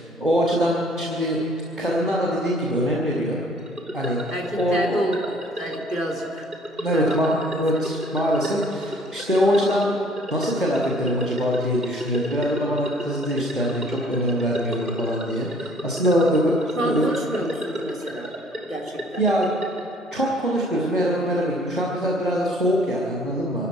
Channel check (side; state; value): both; normal; correlation 0.57